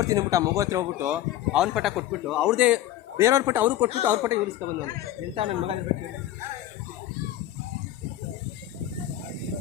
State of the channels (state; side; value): quieter; right; 13.1 dB